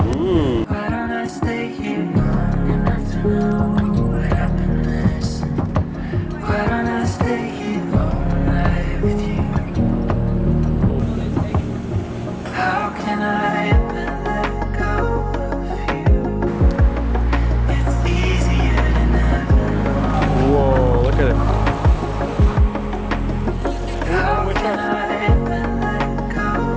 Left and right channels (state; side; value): identical; both; correlation 1.00